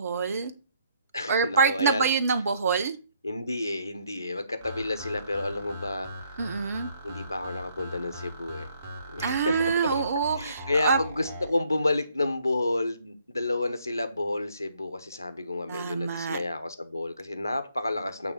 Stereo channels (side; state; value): both; inverted; correlation -0.69